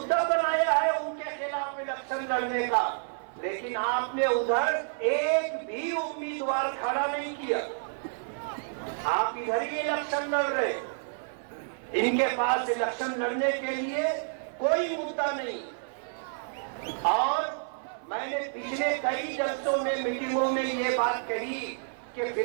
بنایا ہے ان کے خلاف الیکشن لڑنے کا. لیکن آپ نے ادھر ایک بھی امیدوار کھڑا نہیں کیا. آپ ادھر ہی الیکشن لڑ رہے. ان کے پاس الیکشن لڑنے کے لیے کوئی مدعا نہیں. اور میں نے پچھلے کئی جلسوں میں، میٹنگوں میں یہ بات کہی کہ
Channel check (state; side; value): silent; left; 58 dB below the other